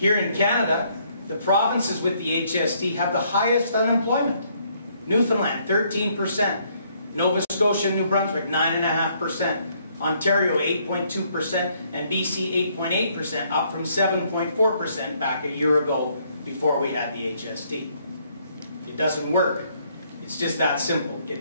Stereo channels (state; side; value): inverted; both; correlation -0.68